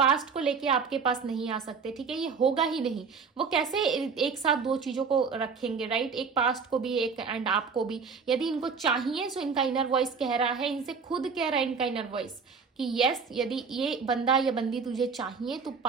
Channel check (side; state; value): left; quieter; 5.5 dB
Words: को लेके आपके पास नहीं आ सकते, ठीक है। ये होगा ही नहीं। वो कैसे एक साथ दो चीजों को रखेंगे, राइट? एक पास्ट को भी एक एंड आपको भी। यदि इनको चाहिए सो इनका इनर वॉइस कह रहा है, इनसे खुद कह रहा है इनका इनर वॉइस कि यस, यदि ये बंदा या बंदी तुझे चाहिए तो